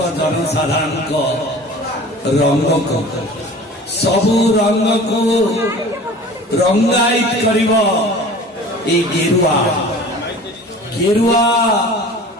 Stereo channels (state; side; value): normal; both; correlation 0.42